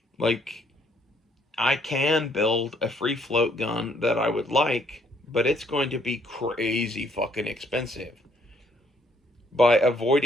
Like, I can build a free float gun that I would like, but it's going to be crazy fucking expensive. By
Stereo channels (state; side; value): normal; both; correlation 0.67